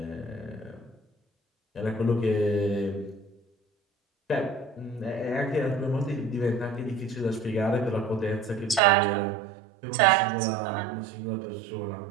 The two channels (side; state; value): left; drops out; at 8.8 s